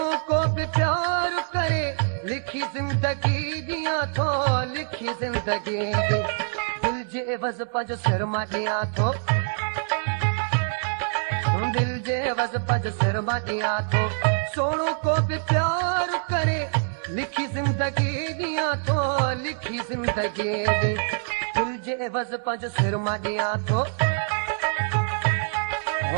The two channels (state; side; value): silent; left; 62 dB below the other